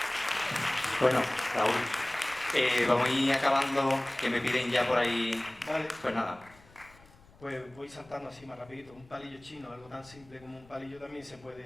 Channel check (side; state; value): left; noise; rumble, 26 dB below the sound